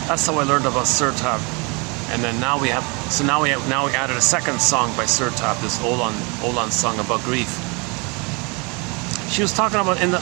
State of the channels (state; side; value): quieter; left; 30.0 dB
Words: That's how I learned about Sir Tab. And then now we added a second song by Sir Tab, this Olan song about grief. She was talking about